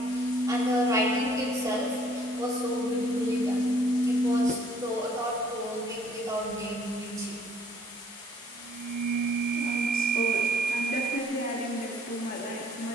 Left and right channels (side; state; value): both; normal; correlation 0.60